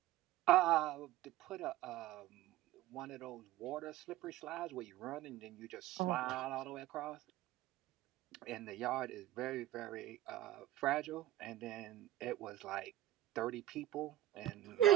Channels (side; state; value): left; quieter; 14.1 dB